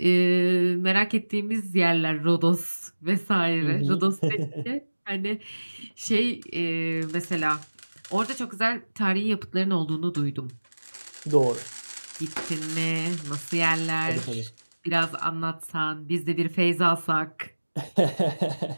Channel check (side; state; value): both; inverted; correlation -1.00